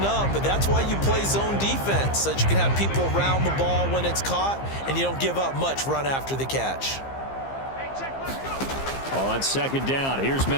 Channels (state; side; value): late; right; 15 ms